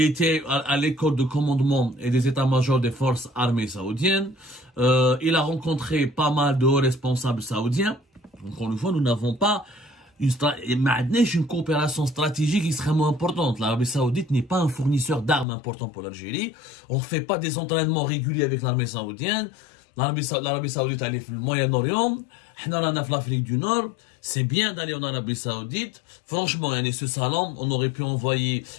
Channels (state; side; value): drops out; right; at 15.5 s